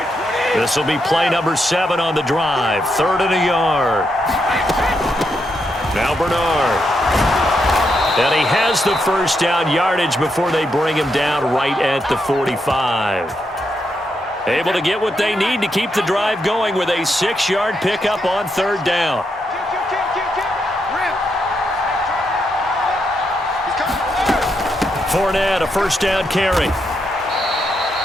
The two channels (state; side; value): normal; both; correlation 0.81